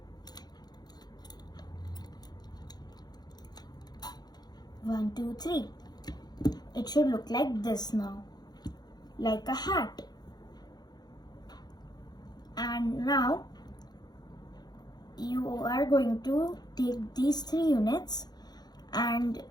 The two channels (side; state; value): right; late; 0.20 ms